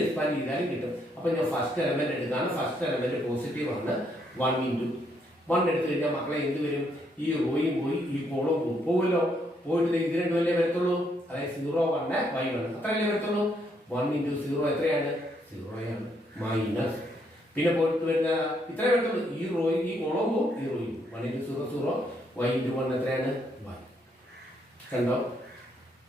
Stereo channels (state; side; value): normal; both; correlation 0.73